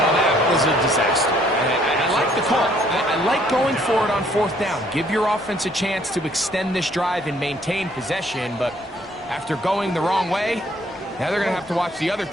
that was was a disaster. I like the call. I like going for it on fourth down. Give your offense a chance to extend this drive and maintain possession, but after going the wrong way, now they're going to have to watch the other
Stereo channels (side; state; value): both; normal; correlation 0.63